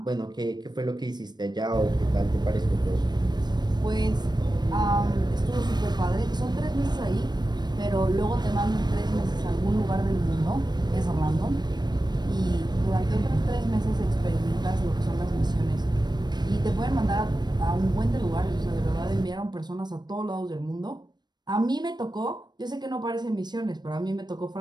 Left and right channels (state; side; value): late; left; 0.21 ms